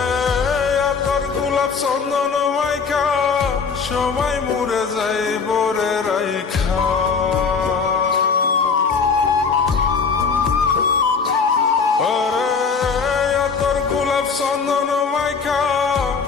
চন্দন মাইখা সবাই মরে যাই বরে রাইখা, আরে তোর গোলাপ চন্দন মাইখা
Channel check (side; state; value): right; quieter; 5.4 dB